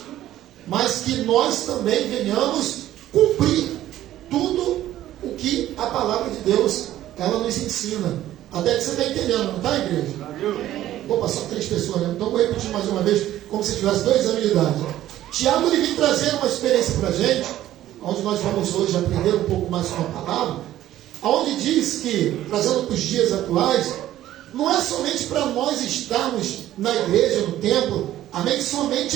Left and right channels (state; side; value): quieter; left; 13.4 dB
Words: mas que nós também venhamos cumprir tudo o que a palavra de Deus ela nos ensina. Até que você está entendendo, não está, igreja? Opa, só 3 pessoas, né? Então vou repetir mais uma vez, como se tivesse 2 anos de idade. Tiago ele vem trazer uma experiência para a gente, onde nós vamos hoje aprender um pouco mais com a palavra, onde diz que, trazendo para os dias atuais, não é somente para nós estarmos na igreja, no templo, amém?